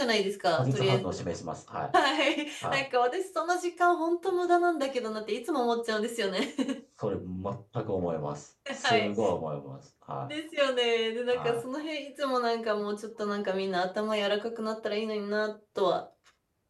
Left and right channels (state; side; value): identical; both; correlation 1.00